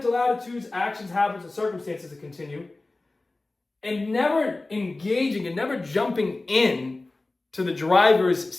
attitudes, actions, habits, and circumstances to continue and never engaging and never jumping in to the driver's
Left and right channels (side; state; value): right; quieter; 3.1 dB